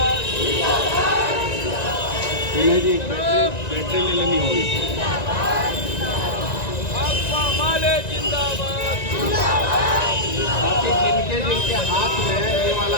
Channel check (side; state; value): right; late; 1.9 ms